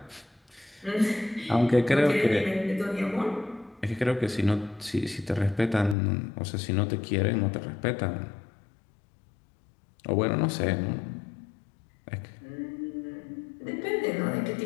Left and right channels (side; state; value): right; drops out; at 6.0 s